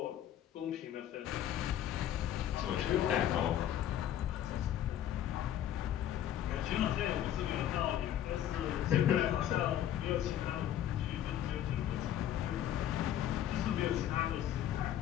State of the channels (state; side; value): quieter; right; 11.1 dB